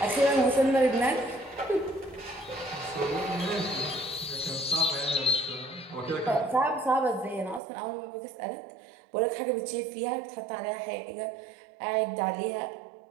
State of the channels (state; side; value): drops out; left; at 7.6 s